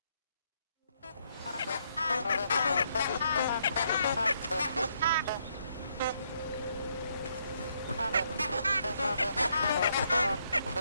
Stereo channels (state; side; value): inverted; both; correlation -0.74